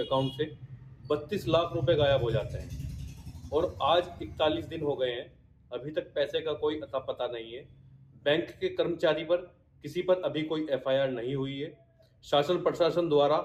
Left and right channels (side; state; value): both; identical; correlation 1.00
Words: से 32 लाख रुपए गायब हो जाते हैं और आज 41 दिन हो गए हैं, अभी तक पैसे का कोई अता पता नहीं है। बैंक के कर्मचारी पर किसी पर अभी कोई एफआईआर नहीं हुई है। शासन प्रशासन द्वारा